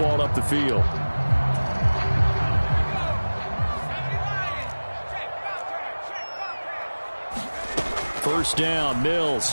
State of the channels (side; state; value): both; inverted; correlation -1.00